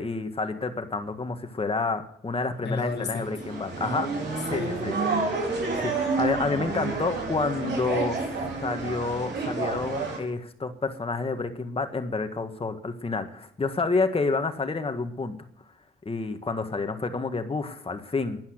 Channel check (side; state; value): both; normal; correlation 0.46